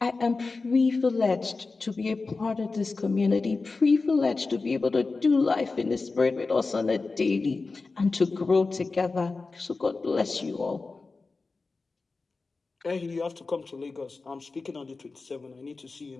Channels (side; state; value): right; quieter; 3.9 dB